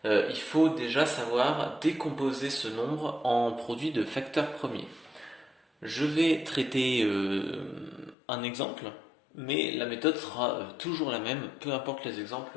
il faut déjà savoir décomposer ce nombre en produit de facteurs premiers. Je vais traiter un exemple, mais la méthode sera toujours la même, peu importe les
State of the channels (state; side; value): drops out; right; at 8.2 s